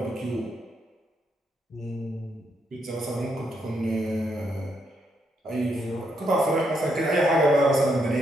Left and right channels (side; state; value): both; normal; correlation 0.78